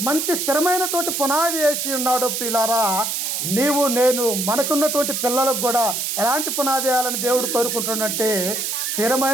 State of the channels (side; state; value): right; noise; hiss, 1 dB below the sound